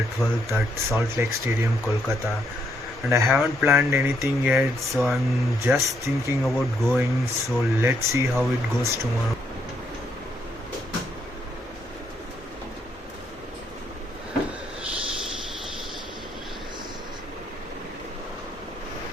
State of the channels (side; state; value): both; normal; correlation 0.74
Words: 12th at Salt Lake Stadium, Kolkata. And I haven't planned anything yet, so I'm just thinking about going. So let's see how it goes tomorrow.